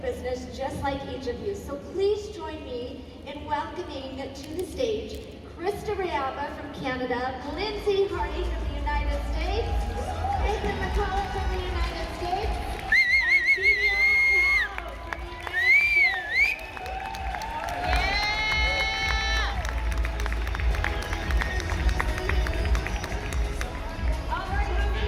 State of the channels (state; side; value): identical; both; correlation 1.00